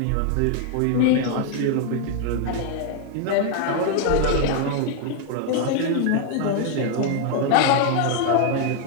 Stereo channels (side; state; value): both; different; correlation 0.00